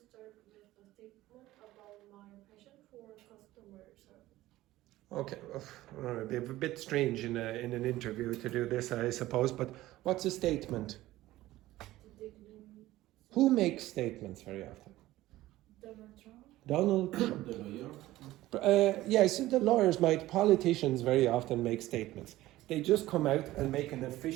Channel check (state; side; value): quieter; left; 16.3 dB